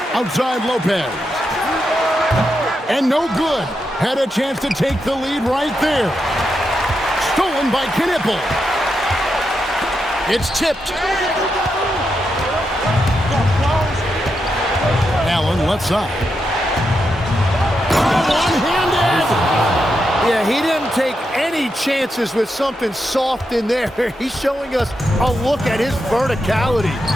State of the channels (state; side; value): normal; both; correlation 0.85